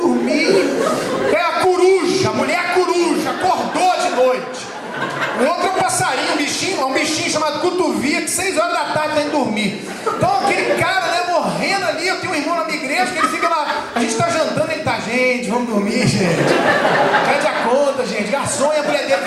É a coruja, a mulher coruja, acordou de noite. O outro é um passarinho, um bichinho chamado cotovia, que 6 horas da tarde tem que dormir. Então aquele cara, né, morrendo ali. Eu tenho um irmão na minha igreja que ele fica lá, a gente tá jantando, ele tá: gente, vamos dormir, gente. Pede a conta, gente. Garçom, e a mulher dele:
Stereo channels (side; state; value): both; identical; correlation 1.00